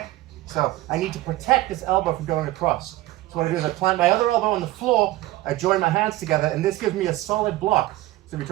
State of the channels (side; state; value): left; quieter; 17.0 dB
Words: So I need to protect this elbow from going across. So what I do is I plant my other elbow on the floor, I join my hands together, and this gives me a solid block. So if he